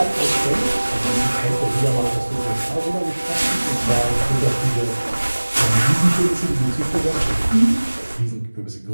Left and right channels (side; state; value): both; inverted; correlation -1.00